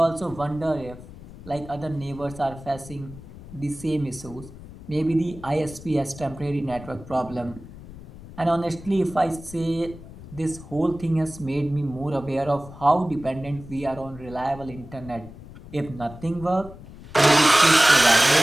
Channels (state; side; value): noise; left; rumble, 16 dB below the sound